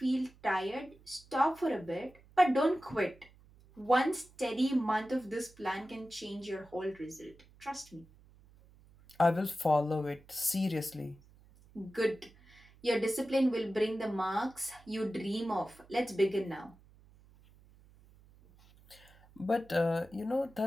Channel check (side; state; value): right; noise; hum, 26 dB below the sound